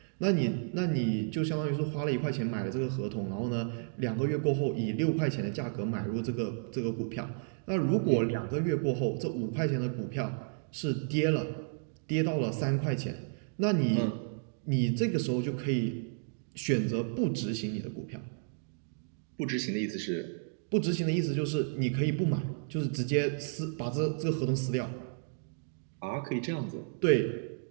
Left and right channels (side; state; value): left; silent; digital silence